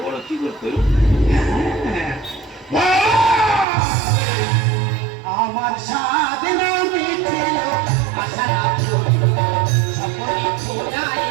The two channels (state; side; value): drops out; left; at 3.7 s